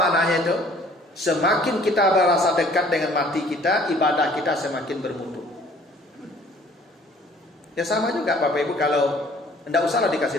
itu? Semakin kita merasa dekat dengan mati kita, ibadah kita semakin bermutu. Ya sama juga Bapak Ibu, kalau tidak usahlah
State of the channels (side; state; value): both; normal; correlation 0.55